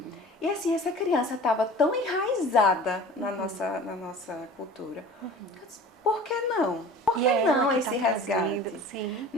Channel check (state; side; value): normal; both; correlation 0.42